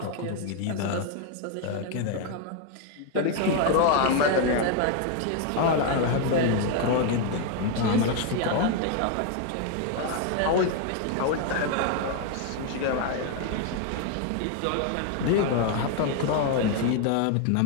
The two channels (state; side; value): different; both; correlation 0.01